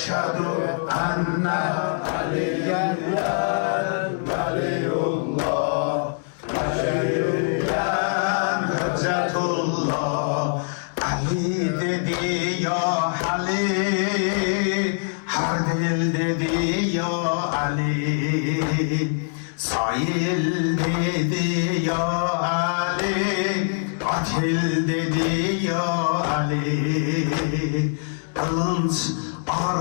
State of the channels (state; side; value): silent; right; digital silence